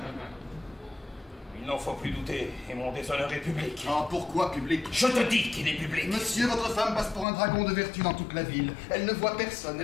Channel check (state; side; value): drops out; right; at 7.2 s